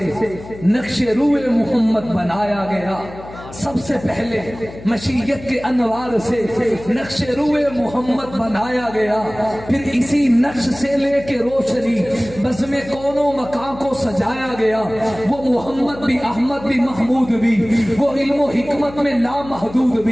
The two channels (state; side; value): noise; left; hum, 15 dB below the sound